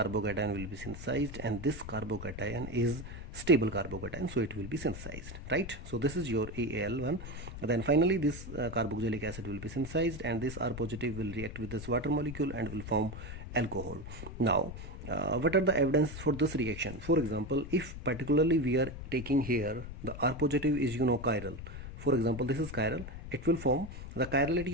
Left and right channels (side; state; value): left; noise; rumble, 10 dB below the sound